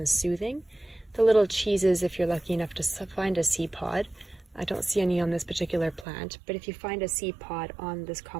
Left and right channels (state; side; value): drops out; left; at 6.1 s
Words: soothing. The little cheeses, if you're lucky enough to find a seed pod, I don't see any on this particular plant, but if you find a seed pod on this